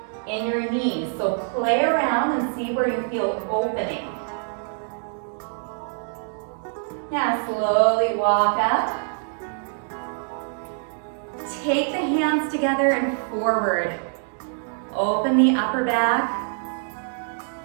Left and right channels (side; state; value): left; silent; 62 dB below the other